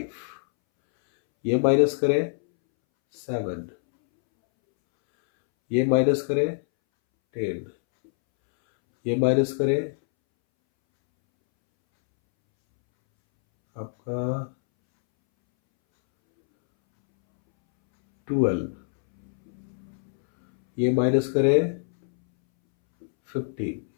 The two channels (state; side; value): silent; right; 62 dB below the other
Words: ये माइनस करें 7, ये माइनस करें 10, ये माइनस करें आपका 12, ये माइनस करें 15,